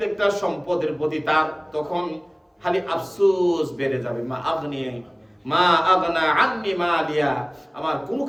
সম্পদের প্রতি তার তখন খালি আফসোস বেড়ে যাবে। মা আগনা আন্নি মালিয়া, আমার কোনো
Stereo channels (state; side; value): identical; both; correlation 1.00